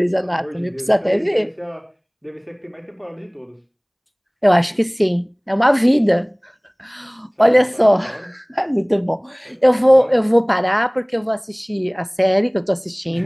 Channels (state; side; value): identical; both; correlation 1.00